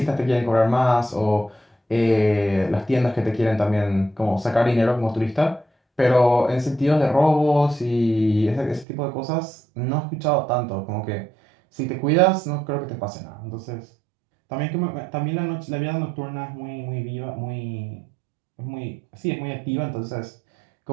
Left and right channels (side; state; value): left; drops out; at 8.8 s